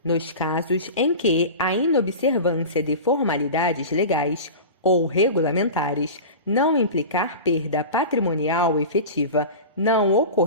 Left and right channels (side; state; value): both; inverted; correlation -0.31